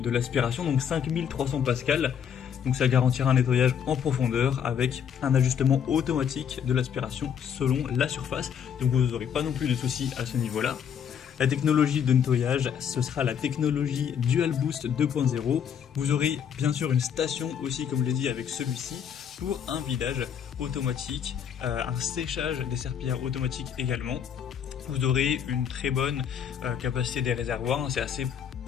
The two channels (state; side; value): quieter; right; 8.1 dB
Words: l'aspiration, donc 5300 pascal, donc ça garantira un nettoyage en profondeur avec un ajustement automatique de l'aspiration selon la surface, donc vous n'aurez pas non plus de soucis à ce niveau là. La technologie de nettoyage, ce sera la technologie Dual Boost 2.0. Vous aurez bien sûr une station aussi, comme je l'ai dit, avec celui-ci pour un vidage automatique, un séchage des serpillères automatique également. Vous aurez une très bonne capacité des réservoirs, c'est